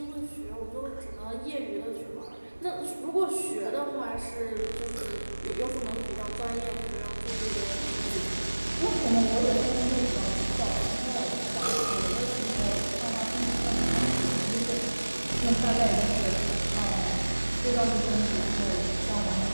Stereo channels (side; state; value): both; inverted; correlation -1.00